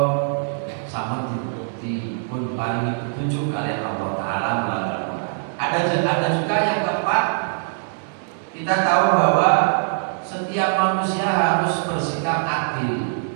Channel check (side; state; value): left; silent; digital silence